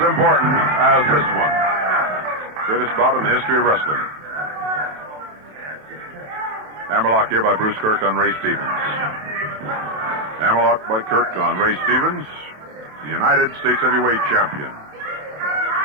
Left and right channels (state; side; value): late; left; 27 ms